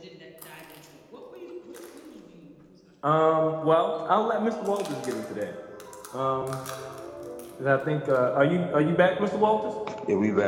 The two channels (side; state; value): both; identical; correlation 1.00